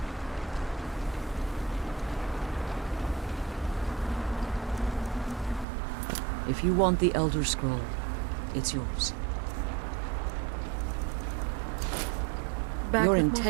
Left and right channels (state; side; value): drops out; left; at 5.7 s